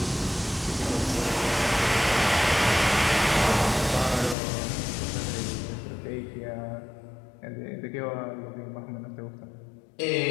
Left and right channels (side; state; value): right; drops out; at 4.4 s